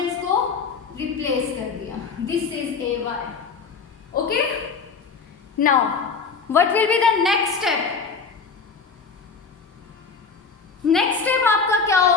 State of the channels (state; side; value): quieter; right; 5.2 dB